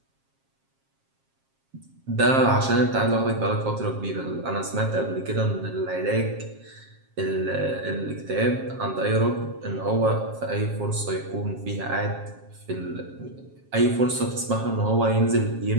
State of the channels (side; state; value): left; late; 7.5 ms